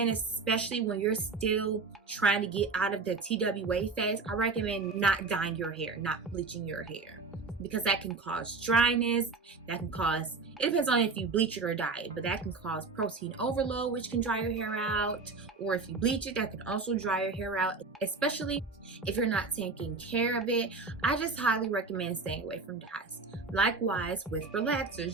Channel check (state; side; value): quieter; left; 4.2 dB